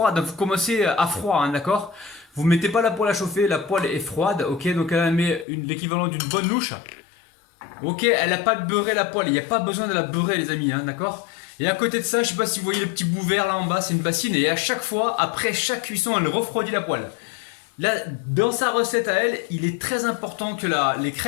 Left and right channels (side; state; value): right; drops out; at 5.5 s